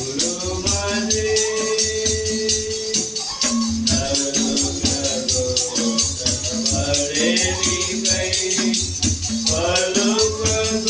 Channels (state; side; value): identical; both; correlation 1.00